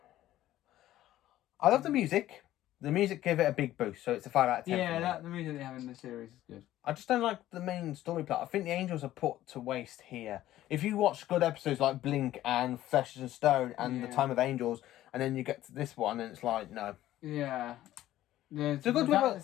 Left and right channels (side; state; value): right; quieter; 14.0 dB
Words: I love the music. The music gave it a big boost, so it's a 5 out of 10. Yeah, the music they have in the series is good. I just don't like the main story plot. I think the Angels are put to waste here. If you watch good episodes like Blink and Flesh and Stone and The Time of Angels, and then you get to this one and it's like, no. Yeah. The